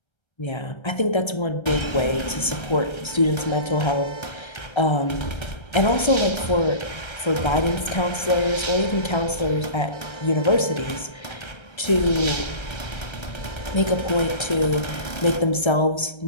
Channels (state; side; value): late; right; 1.3 ms